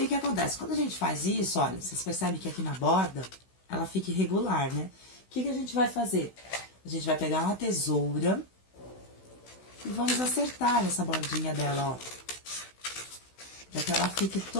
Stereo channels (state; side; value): late; right; 16 ms